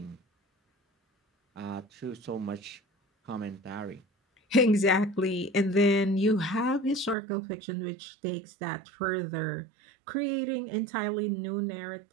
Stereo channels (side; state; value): left; drops out; at 7.2 s